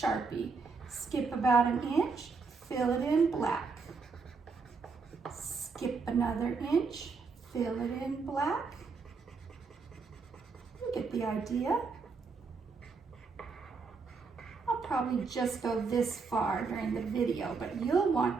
Skip about an inch, fill it in black. Skip another inch, fill it in black. You get the idea. I'll probably just go this far during the video, but you'll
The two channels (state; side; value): quieter; left; 4.7 dB